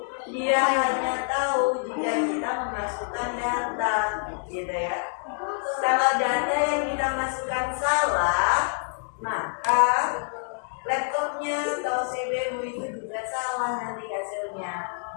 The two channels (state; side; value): silent; right; digital silence